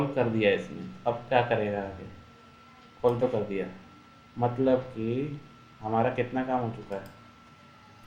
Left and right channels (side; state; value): both; identical; correlation 1.00